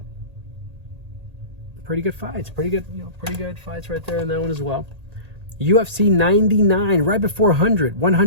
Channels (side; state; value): left; late; 1.8 ms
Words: Pretty good fights. Pretty good fights right there in that one as well. UFC 99, right before 100.